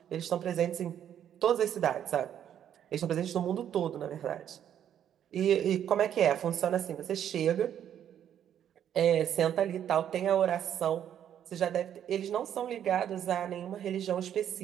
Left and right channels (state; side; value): quieter; left; 9.9 dB